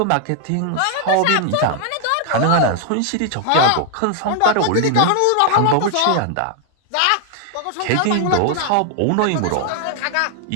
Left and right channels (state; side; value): different; both; correlation 0.00